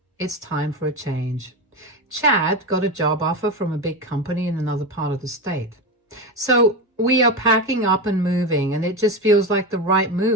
it's time for a change. Chad got a job offer from a big company in another part of the state. So we are packing up and moving, and it just feels like the right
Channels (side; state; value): both; normal; correlation 0.19